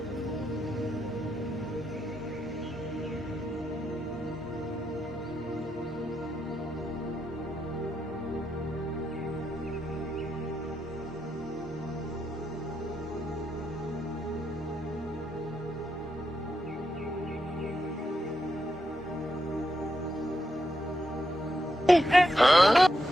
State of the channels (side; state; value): both; normal; correlation 0.83